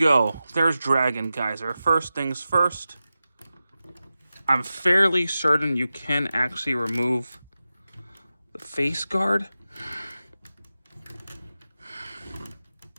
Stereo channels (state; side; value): inverted; both; correlation -0.94